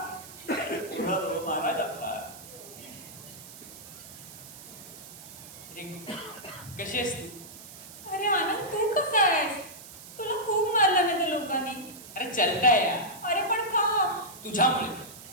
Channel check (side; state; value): right; noise; hiss, 16 dB below the sound